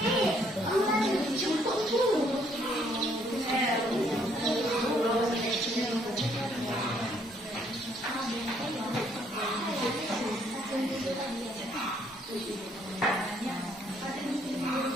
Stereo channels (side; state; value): both; normal; correlation 0.67